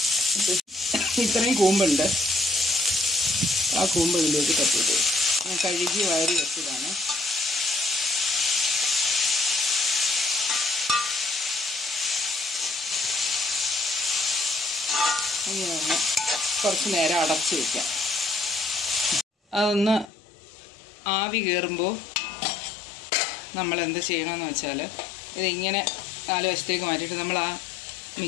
ഇത്രയും കൂമ്പുണ്ട്. ആ കൂമ്പ് ഇതിലേക്ക് തട്ടിയിട്ട് ഞാൻ കഴുകി വാരി വെച്ചതാണ്. ഇങ്ങനെ കുറച്ച് നേരം അടച്ചു വയ്ക്കാം. അതൊന്ന് ആവി കയറുമ്പോൾ നമ്മൾ എന്ത് ചെയ്യണമെന്ന് വെച്ചാൽ ഇതിങ്ങനെ 4 വശത്തേക്ക് മാറ്റിയിട്ട് നമ്മൾ ആ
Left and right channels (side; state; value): right; drops out; at 20.1 s